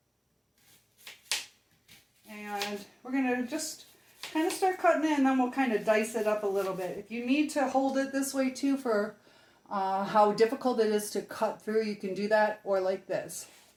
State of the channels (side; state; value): both; identical; correlation 1.00